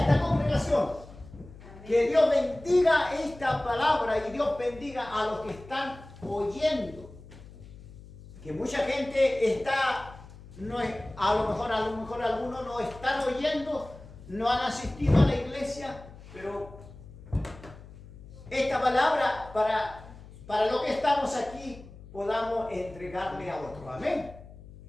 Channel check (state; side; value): noise; left; hum, 18 dB below the sound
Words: congregación. Que Dios bendiga esta palabra y Dios bendiga a los que están oyendo. Que mucha gente está, no es, a lo mejor algunos no están oyendo, no han asistido a la iglesia, pero esta palabra para lo que estamos aquí podamos entregarle a otro. Amén.